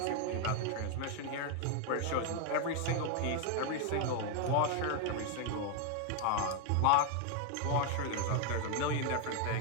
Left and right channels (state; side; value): different; both; correlation 0.00